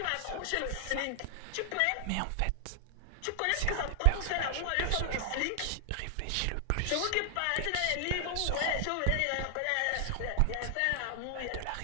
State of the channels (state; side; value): different; both; correlation 0.00